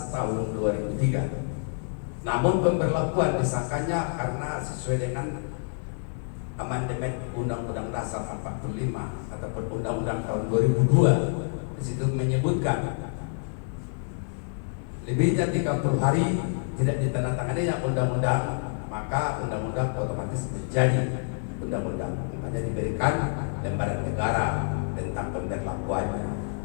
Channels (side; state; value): right; silent; 60 dB below the other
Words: Tahun 2003. Namun pemberlakuan disahkannya karena sesuai dengan amandemen Undang-Undang Dasar 45 ataupun Undang-Undang tahun 2002. Di situ menyebutkan lebihnya 30 hari tidak ditandatangani yang undang-undang, maka undang-undang otomatis menjadi undang-undang. Makanya diberikan lembaran negara tentang pemberlakuannya.